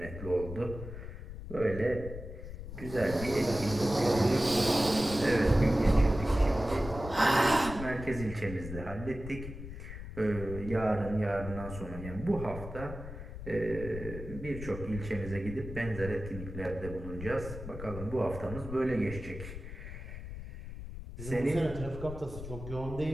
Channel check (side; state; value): left; noise; rumble, 10 dB below the sound